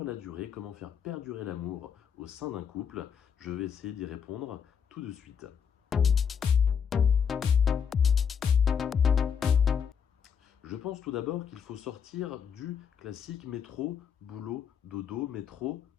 la durée? Comment faire perdurer l'amour au sein d'un couple? Je vais essayer d'y répondre tout de suite. Je pense tout d'abord qu'il faut sortir du classique métro, boulot, dodo, métro,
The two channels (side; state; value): right; quieter; 7.2 dB